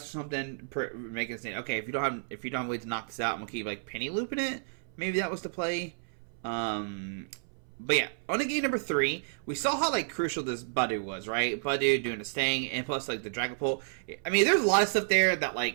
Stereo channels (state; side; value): silent; left; 57 dB below the other